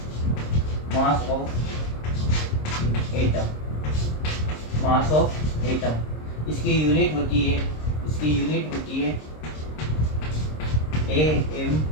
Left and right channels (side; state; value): right; late; 26 ms